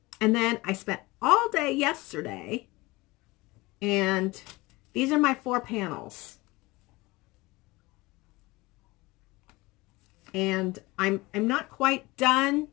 And then I spent all day yesterday, and these are my 4 panels. And I'm not quite done.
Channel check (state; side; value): quieter; right; 22.0 dB